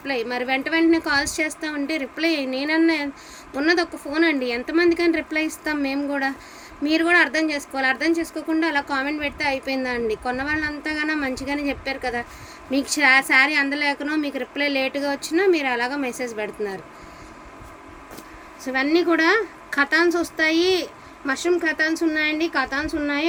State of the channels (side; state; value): both; identical; correlation 1.00